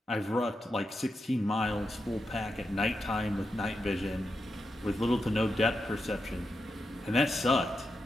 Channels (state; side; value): normal; both; correlation 0.87